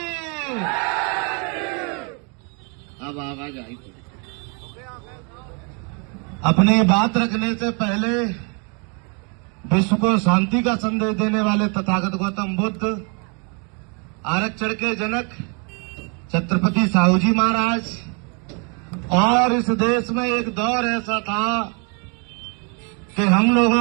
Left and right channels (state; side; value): quieter; left; 35.3 dB